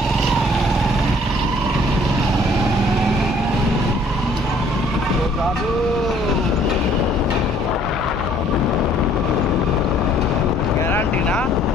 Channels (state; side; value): normal; both; correlation 0.59